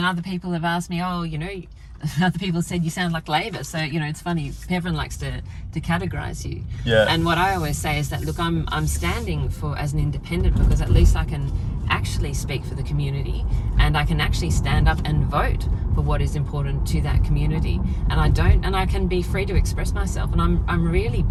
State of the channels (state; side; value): identical; both; correlation 1.00